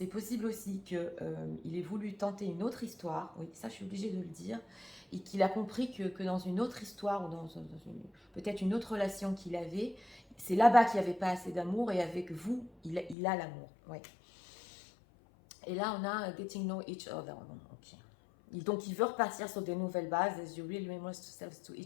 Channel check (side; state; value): right; drops out; at 13.2 s